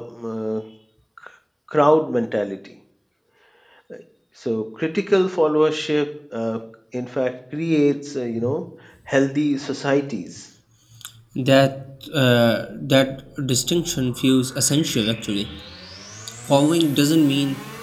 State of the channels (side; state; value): both; identical; correlation 1.00